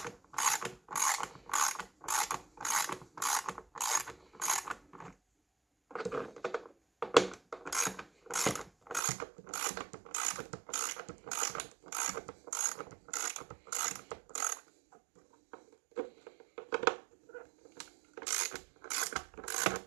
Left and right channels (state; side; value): drops out; left; at 9.0 s